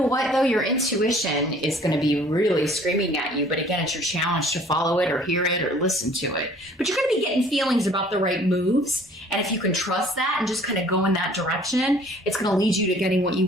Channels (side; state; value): both; normal; correlation 0.54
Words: what, though? Your intuition is going to be really screaming at you. But again, it's your challenge to follow it or hear it or listen to it. But you're going to be getting feelings about the right moves. And if you can trust that and just kind of go in that direction, it's going to lead you to getting what you